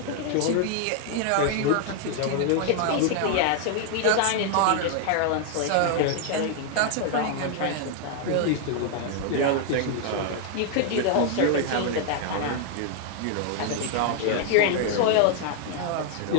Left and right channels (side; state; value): both; different; correlation 0.00